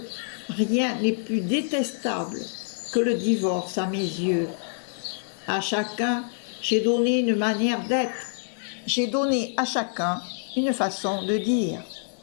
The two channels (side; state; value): right; silent; digital silence